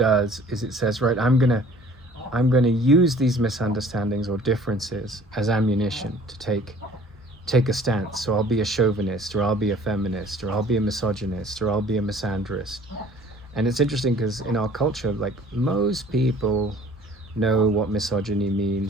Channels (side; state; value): both; normal; correlation 0.51